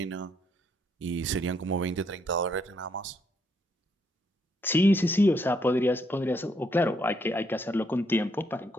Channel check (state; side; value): normal; both; correlation 0.73